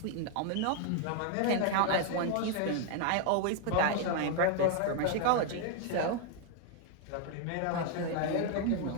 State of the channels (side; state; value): both; different; correlation 0.00